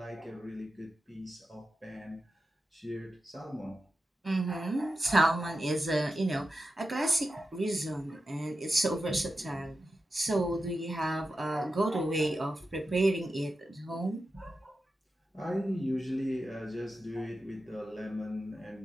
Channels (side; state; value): both; normal; correlation 0.91